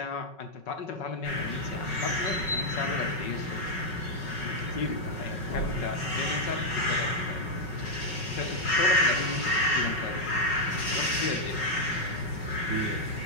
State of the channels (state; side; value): late; right; 5.4 ms